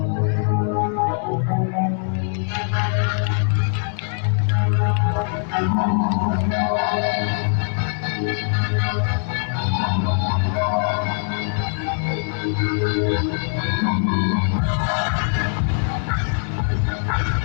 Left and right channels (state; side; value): silent; right; 60 dB below the other